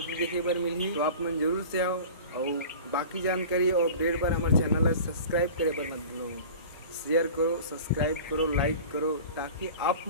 देखे बर मिली तो आप मन जरूर से आओ। और बाकी जानकारी और अपडेट पर हमारे चैनल को सब्सक्राइब करे पर मत भूलो, शेयर करो, सब्सक्राइब करो, लाइक करो ताकि आप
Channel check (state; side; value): inverted; both; correlation -0.39